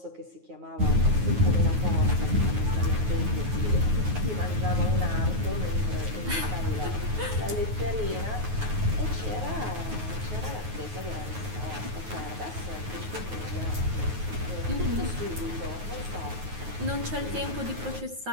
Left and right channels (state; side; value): late; left; 9.4 ms